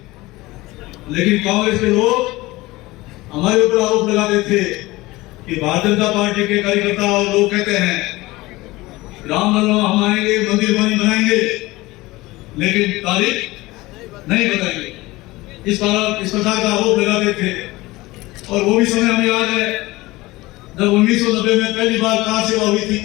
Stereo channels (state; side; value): quieter; right; 20.1 dB